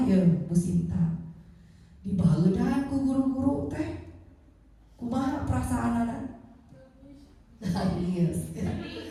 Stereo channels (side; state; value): both; identical; correlation 1.00